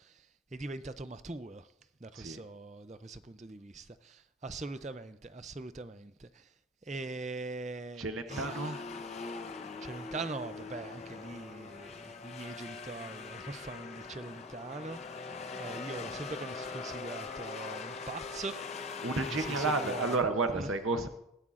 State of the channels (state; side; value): normal; both; correlation 0.32